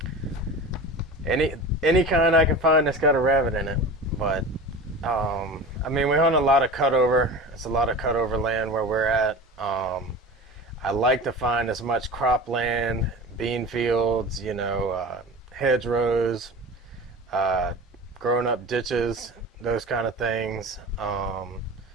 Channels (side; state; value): both; normal; correlation 0.33